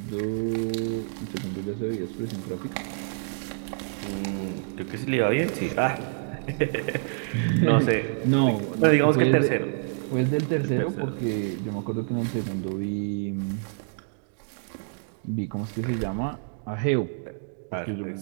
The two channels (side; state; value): left; silent; digital silence